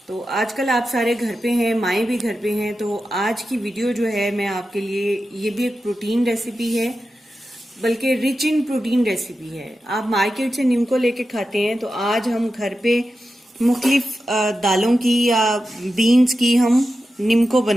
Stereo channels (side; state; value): both; normal; correlation 0.91